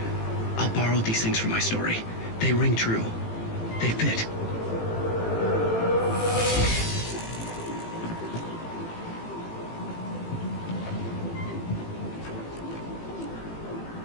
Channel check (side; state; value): right; late; 18 ms